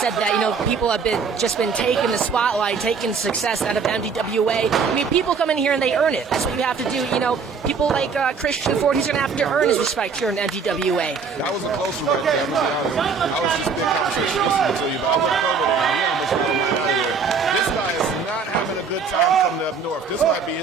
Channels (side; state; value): left; quieter; 5.4 dB